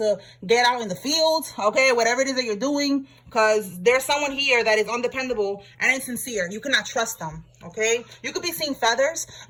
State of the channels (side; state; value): both; identical; correlation 1.00